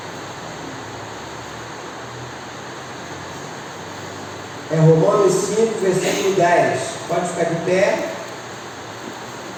é Romanos 5, versículo 10. Pode ficar de pé.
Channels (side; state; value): both; identical; correlation 1.00